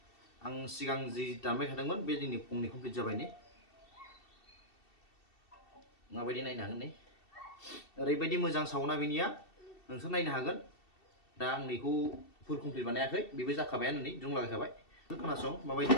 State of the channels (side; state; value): right; late; 2.7 ms